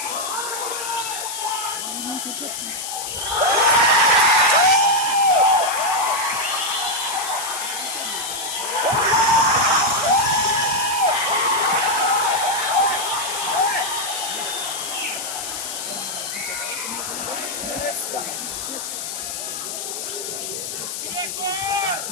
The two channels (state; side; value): noise; left; hiss, 6 dB below the sound